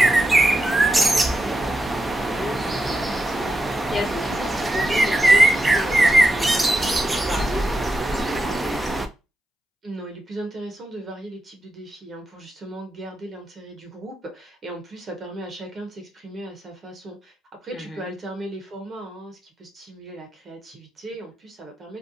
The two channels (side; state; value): both; normal; correlation 0.87